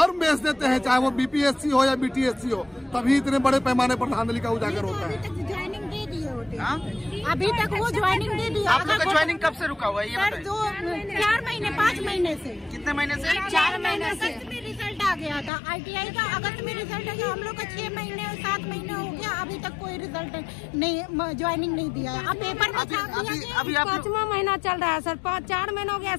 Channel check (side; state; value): right; drops out; at 15.5 s